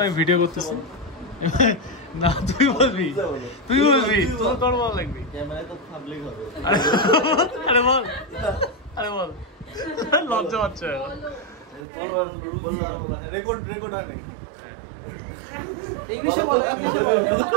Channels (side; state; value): left; drops out; at 11.9 s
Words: আমি ভিডিও করতেছি। না তুই বলবি, তুই বলবি, তোর বল লাগবি। ক্যামেরায় তো পাবলিক হবে। আরে বল, আরে বল, লজ্জা পাচ্ছে। তোর বললাম রেকর্ড হয় নাকি? ইংলিশে বল, ইংলিশে